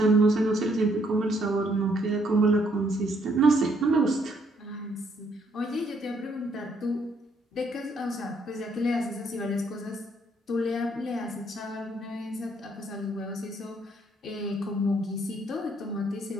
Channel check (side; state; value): both; normal; correlation 0.69